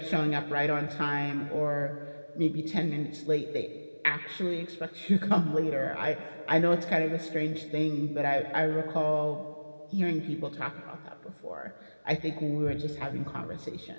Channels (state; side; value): inverted; both; correlation -1.00